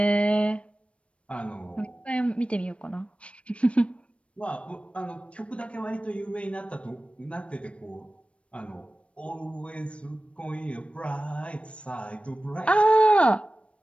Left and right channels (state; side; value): late; right; 0.061 ms